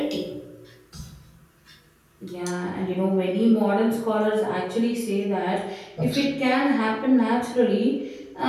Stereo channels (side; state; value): both; identical; correlation 1.00